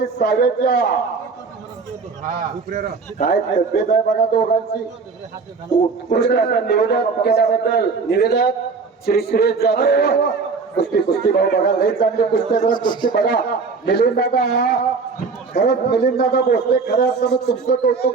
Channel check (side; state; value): left; quieter; 4.7 dB